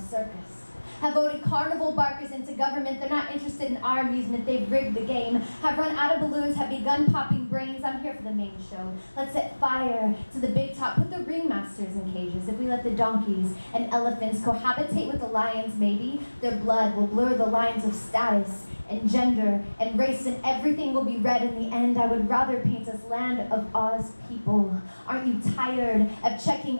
circus. Have voted carnival barkers into government. They're not interested in our amusement. They've rigged the game. Have run out of balloons. Have begun popping brains. I'm here for the main show. Let's set fire to the big top. Put the ringmasters in cages. If we let the donkeys and elephants cohabitate with the lions, maybe their blood will blur the lines of status and gender and race, and everything will be red in the end. I would rather paint us land of Oz people. Aren't you tired of checking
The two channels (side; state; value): both; inverted; correlation -1.00